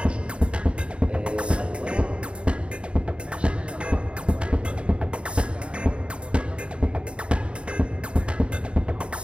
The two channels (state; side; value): late; left; 0.057 ms